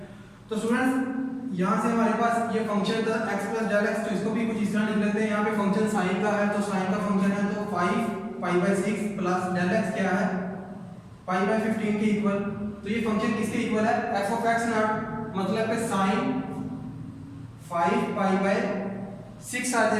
तो स्टूडेंट्स यहाँ से हमारे पास ये फंक्शन था x प्लस डेल x, तो इसको भी कुछ इस तरह लिख लेते हैं। यहाँ पे फंक्शन साइन का है तो साइन का फंक्शन है तो 5 पाई बाय 6 प्लस डेल x क्या है पाई बाय 15 के इक्वल। तो ये फंक्शन किसके इक्वल है f ऑफ x नॉट, मतलब कि साइन 5 पाई बाय 6 आ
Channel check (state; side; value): identical; both; correlation 1.00